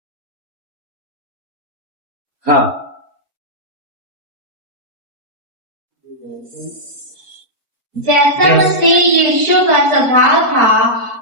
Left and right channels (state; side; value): late; left; 4.3 ms